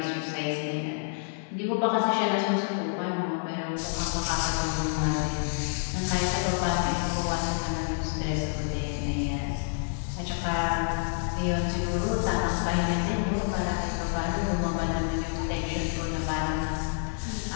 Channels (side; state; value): right; silent; 57 dB below the other